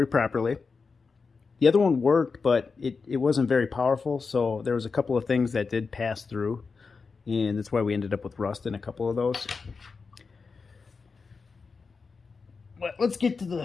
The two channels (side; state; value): right; quieter; 4.8 dB